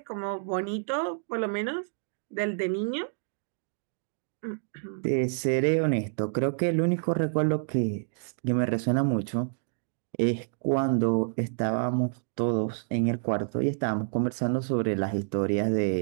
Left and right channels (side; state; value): left; silent; digital silence